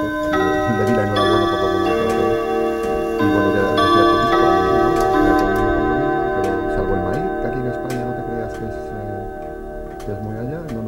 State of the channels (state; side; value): identical; both; correlation 1.00